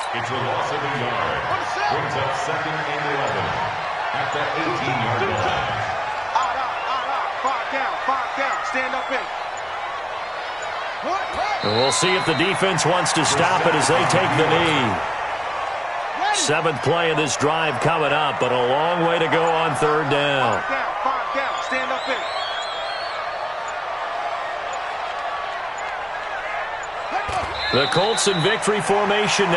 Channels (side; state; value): both; identical; correlation 1.00